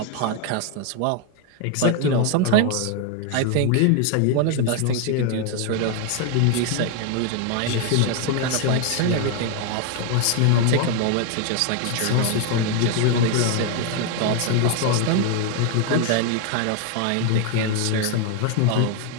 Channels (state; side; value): different; both; correlation 0.00